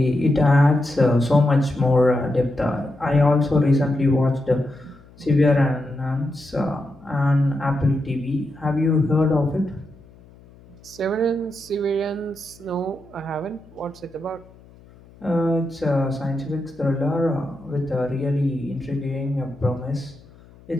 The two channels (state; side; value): noise; left; hum, 25 dB below the sound